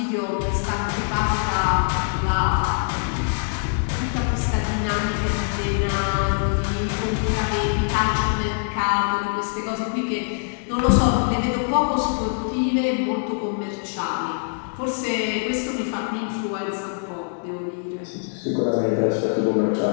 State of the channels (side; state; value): right; silent; 63 dB below the other